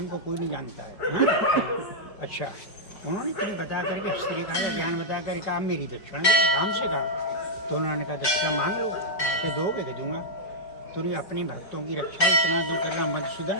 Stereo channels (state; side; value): late; right; 4.8 ms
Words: को कोई नहीं जानता है। हाँ? अच्छा, उन्होंने तुम्हें बता करके हस्तरेखा का ज्ञान बता कर कहा मेरी दक्षिणा दो, राम से कहा। तो उन्होंने कहा दक्षिणा मांग लो, मैं दोगे कि दूंगा। तुमने अपने भक्तों की रक्षा इतना दूर करना मधुसूदन,